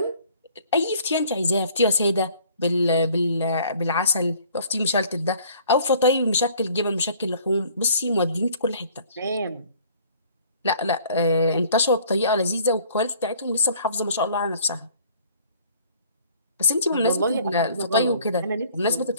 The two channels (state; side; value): inverted; both; correlation -0.55